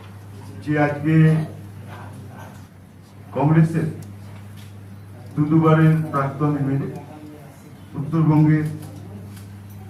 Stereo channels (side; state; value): both; identical; correlation 1.00